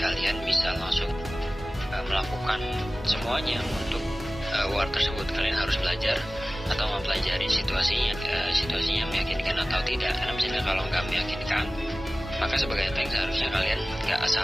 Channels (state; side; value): normal; both; correlation 0.97